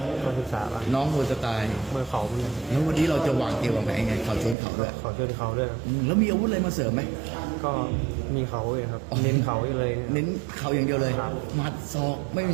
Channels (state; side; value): drops out; left; at 4.5 s